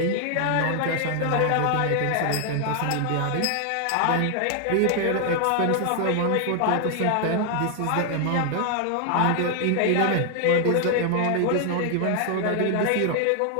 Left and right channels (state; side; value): different; both; correlation 0.00